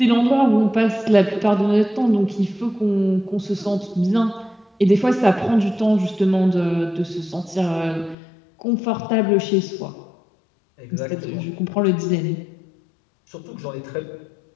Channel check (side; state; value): right; drops out; at 8.2 s